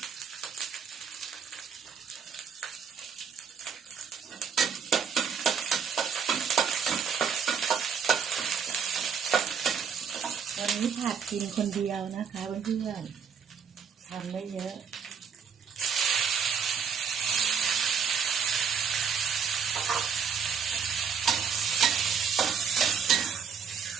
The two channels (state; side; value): quieter; left; 6.7 dB